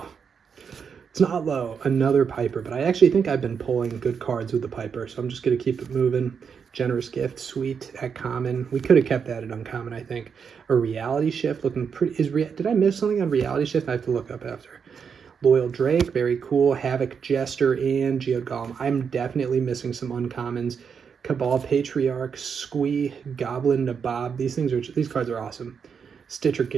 It's not low. Another Piper, but I actually think I've been pulling good cards with the Piper, so I'm just going to keep it moving. Generous Gift, sweet at common. We could have kept that at uncommon, I think. A Reality Shift, looking pretty. Did I miss something on Reality Shift? I have to look up after. Loyal Drake, very cool. Havoc Jester and Geode Golem. I'm definitely missing some uncommons. Cabal Patriarch, Squee, Goblin Nabob. These cards are awesome. Stitcher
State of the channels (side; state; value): left; quieter; 6.5 dB